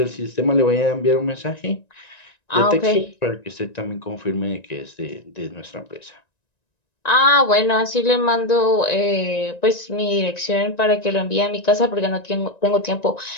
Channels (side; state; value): right; late; 1.9 ms